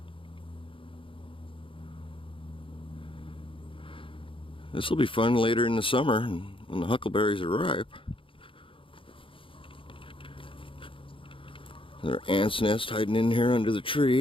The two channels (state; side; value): late; right; 0.25 ms